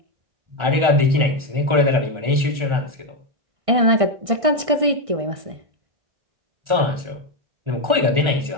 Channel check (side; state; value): left; late; 1.4 ms